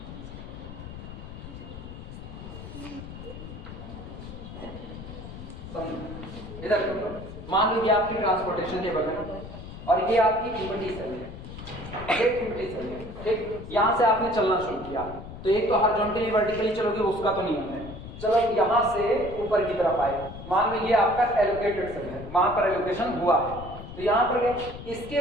इधर देखो, मान लीजिए आपकी ट्रांसपोर्टेशन टेबल है और ये आपकी इक्विटी सेल है, ये इक्विटी सेल है, ठीक। यहाँ से आपने चलना शुरू किया तो एक तो हॉरिजॉन्टली वर्टिकली चलोगे, उसका तो नियम है। चलो यहाँ से ऊपर की तरफ आए, मान लीजिए आपका एलोकेटेड सेल है, वहां पर एलोकेशन हुआ है तो यहाँ पर गए।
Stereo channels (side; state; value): left; noise; rumble, 12 dB below the sound